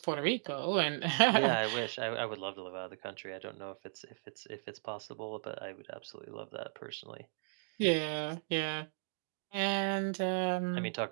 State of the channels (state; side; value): silent; left; digital silence